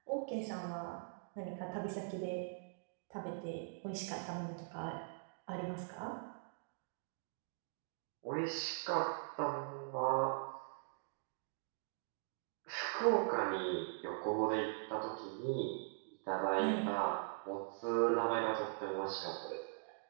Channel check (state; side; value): silent; left; digital silence